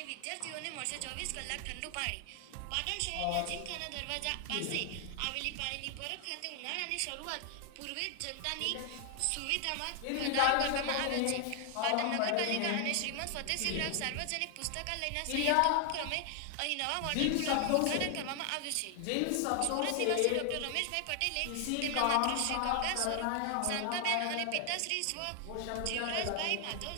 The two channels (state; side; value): different; both; correlation 0.00